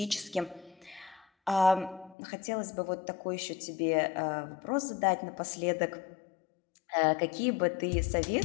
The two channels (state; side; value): drops out; right; at 2.1 s